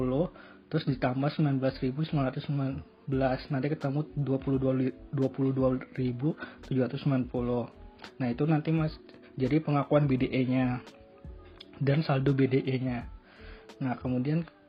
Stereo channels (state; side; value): identical; both; correlation 1.00